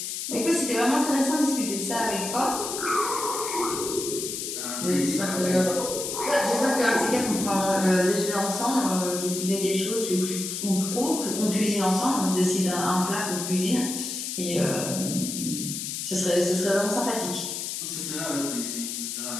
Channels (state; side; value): noise; left; hiss, 5 dB below the sound